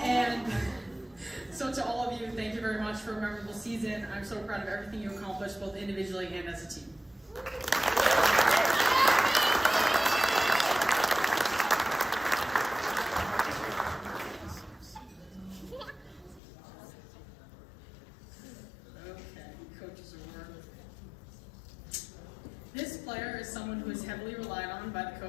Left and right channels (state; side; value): drops out; right; at 16.4 s